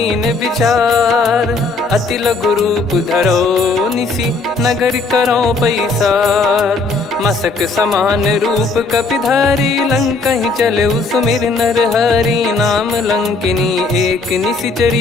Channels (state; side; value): quieter; right; 3.8 dB